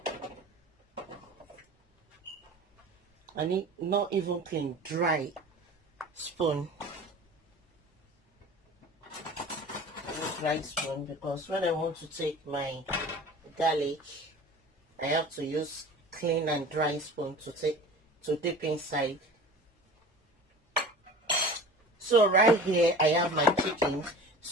I need not even clean, dry spoon. Dry spoon, because when I want to take my garlic, I have to use clean and dry spoon to dip inside. So right here I have my chicken.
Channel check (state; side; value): normal; both; correlation 0.39